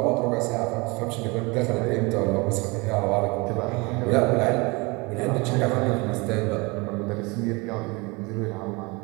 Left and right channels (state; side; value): quieter; left; 26.5 dB